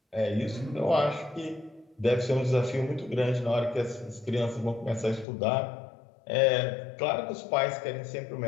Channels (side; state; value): right; drops out; at 5.2 s